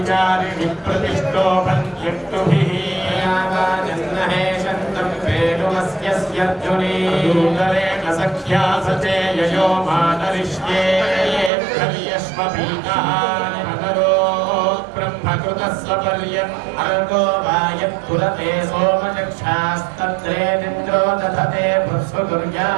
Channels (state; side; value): drops out; left; at 11.5 s